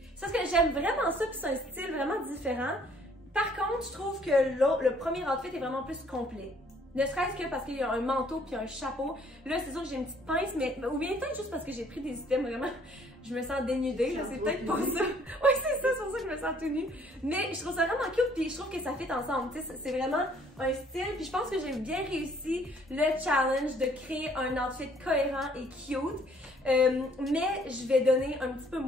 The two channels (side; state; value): both; normal; correlation 0.61